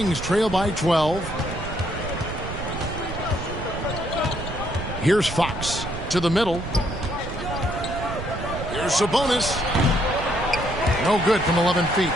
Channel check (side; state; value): right; noise; rumble, 8 dB below the sound